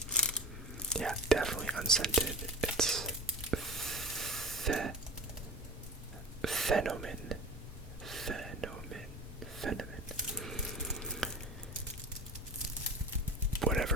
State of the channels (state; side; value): normal; both; correlation 0.33